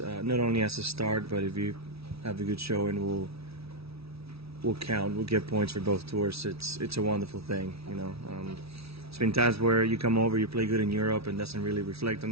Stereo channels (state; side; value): late; left; 0.77 ms